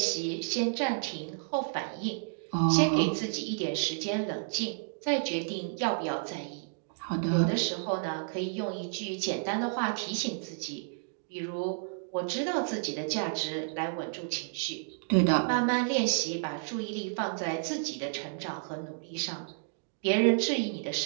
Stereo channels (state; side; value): silent; left; digital silence